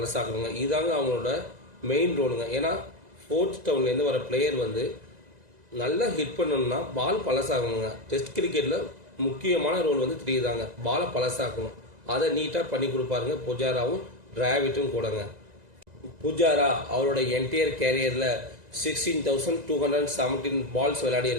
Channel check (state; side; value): late; left; 2.0 ms